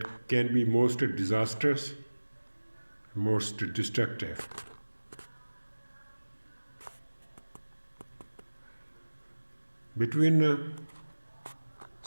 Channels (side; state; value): both; inverted; correlation -1.00